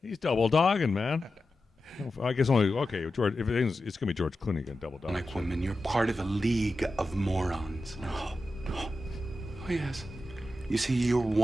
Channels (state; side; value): normal; both; correlation 0.91